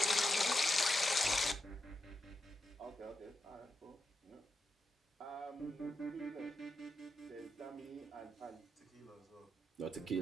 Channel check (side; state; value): both; normal; correlation 0.86